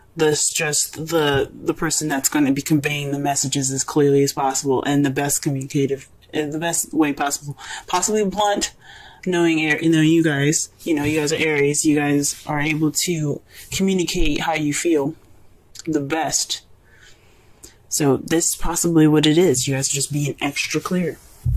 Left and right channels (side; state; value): both; identical; correlation 1.00